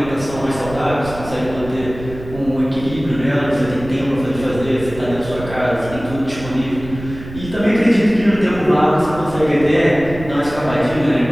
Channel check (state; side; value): noise; right; rumble, 13 dB below the sound